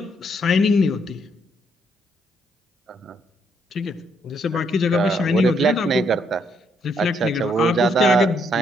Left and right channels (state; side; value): normal; both; correlation 0.72